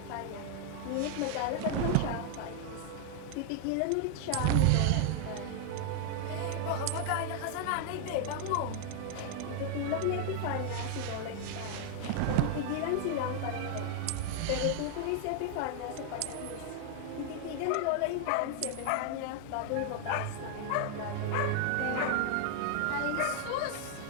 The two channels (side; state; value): both; different; correlation 0.00